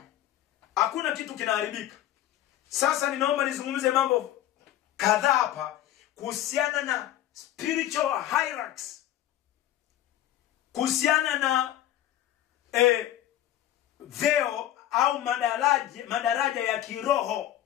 Hakuna kitu kinaharibika. Sasa ninaomba nizungumze mambo kadhaa hapa kuhusiana na spiritual hierarchies, kuhusiana na vyeo au madaraja ya kiroho,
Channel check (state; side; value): quieter; right; 12.7 dB